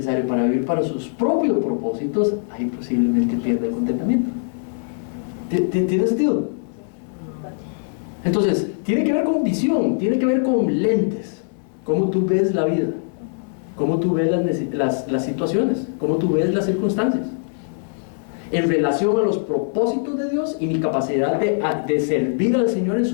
para vivir para sus propios propósitos, ahí posiblemente pierde el contentamiento. ¿Tiene sentido? Entonces, tiene que ver con visión, tiene que ver con lentes, cómo tú ves la vida, cómo tú ves las situaciones, cómo tú ves las circunstancias, en relación a los propósitos de Dios y mi capacidad de servir al Señor en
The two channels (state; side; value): silent; right; digital silence